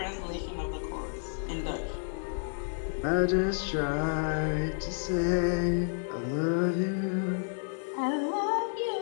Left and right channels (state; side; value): silent; right; digital silence